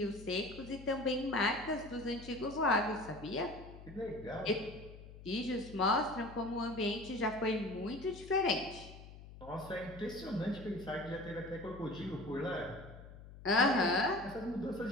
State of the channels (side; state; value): left; noise; hum, 16 dB below the sound